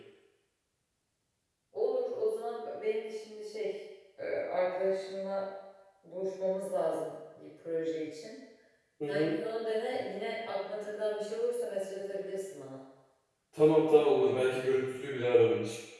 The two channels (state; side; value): identical; both; correlation 1.00